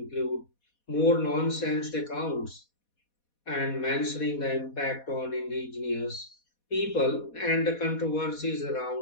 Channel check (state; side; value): late; right; 4.2 ms